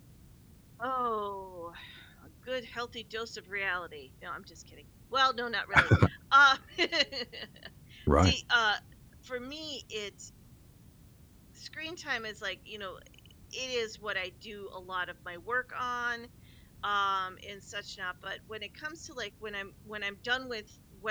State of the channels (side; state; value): both; identical; correlation 1.00